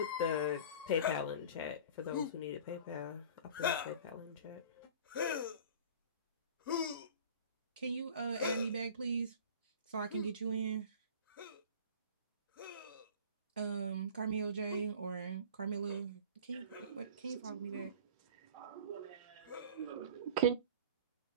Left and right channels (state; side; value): inverted; both; correlation -0.41